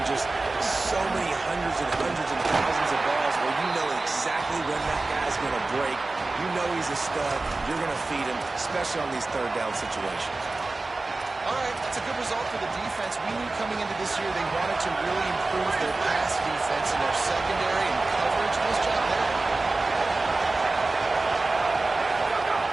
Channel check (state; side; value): quieter; left; 3.3 dB